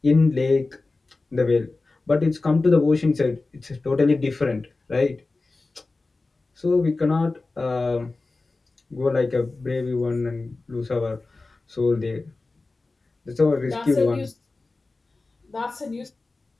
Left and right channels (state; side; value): quieter; right; 3.5 dB